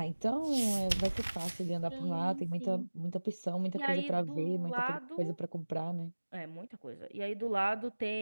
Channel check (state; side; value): inverted; both; correlation -1.00